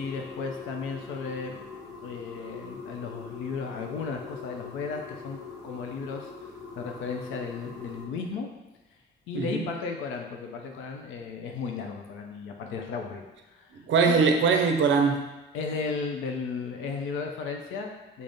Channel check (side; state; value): both; normal; correlation 0.33